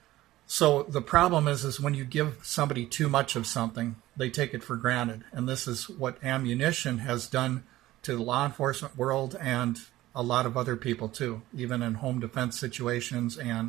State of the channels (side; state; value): left; quieter; 16.2 dB